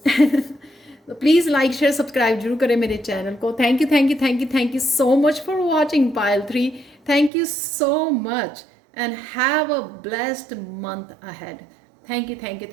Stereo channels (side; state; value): left; drops out; at 7.3 s